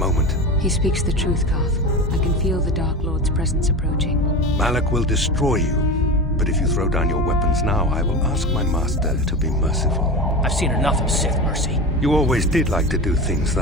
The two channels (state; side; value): normal; both; correlation 0.26